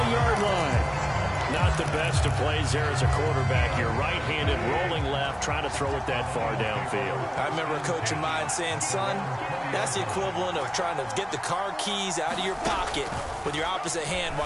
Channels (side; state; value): both; identical; correlation 1.00